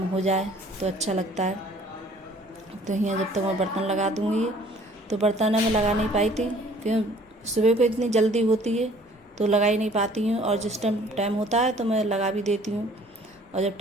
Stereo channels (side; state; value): both; normal; correlation 0.55